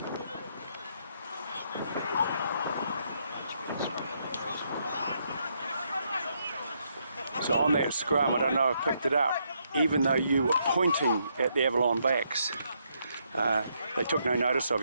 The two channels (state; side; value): inverted; both; correlation -0.76